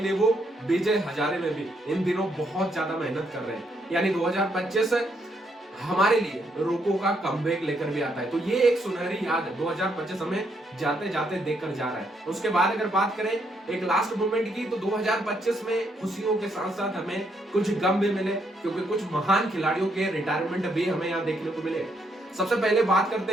वो विजय हजारे में भी इन दिनों बहुत ज्यादा मेहनत कर रहे हैं। यानी 2025 हमारे लिए रोको का कमबैक लेकर भी आता है। तो ये एक सुनहरी याद 2025 हमें जाते जाते देखकर जा रहा है। उसके बाद अगर बात करें एक लास्ट मोमेंट की, तो 2025 में खुशियों के साथ साथ हमें कुछ गम भी मिले, क्योंकि कुछ महान खिलाड़ियों के रिटायरमेंट भी हमें यहाँ देखने को मिले। सबसे पहले बात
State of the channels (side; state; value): both; normal; correlation 0.75